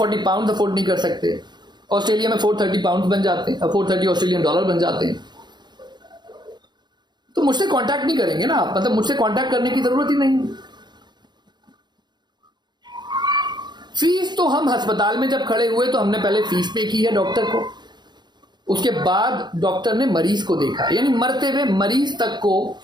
पाउंड अफोर्ड नहीं कर सकते, ऑस्ट्रेलिया में 430 पाउंड बन जाते हैं, 430 ऑस्ट्रेलियन डॉलर बन जाते हैं, तो मुझसे कांटेक्ट नहीं करेंगे ना आप, मतलब मुझसे कांटेक्ट करने की जरूरत ही नहीं। फीस तो हम अस्पताल में जब खड़े हुए तो हमने पहले फीस पे की है डॉक्टर को, उसके बाद डॉक्टर ने मरीज को देखा, यानी मरते हुए मरीज तक को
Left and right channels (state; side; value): late; left; 0.21 ms